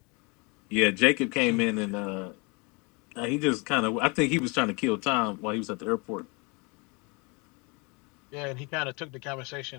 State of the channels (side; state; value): right; quieter; 29.7 dB